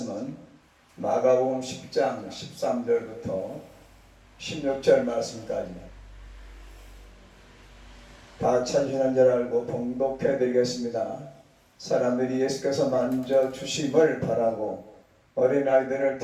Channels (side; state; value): both; identical; correlation 1.00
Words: 마가복음 10장 13절부터 16절 말씀까지입니다. 다 찾으시는 줄 알고 봉독해 드리겠습니다. 사람들이 예수께서 만져 주심을 바라고 어린아이들을